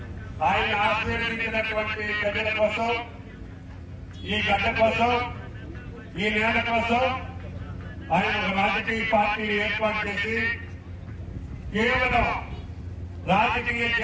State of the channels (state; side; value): identical; both; correlation 1.00